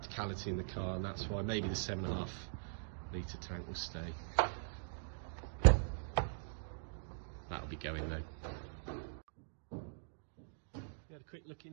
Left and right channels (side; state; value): left; silent; digital silence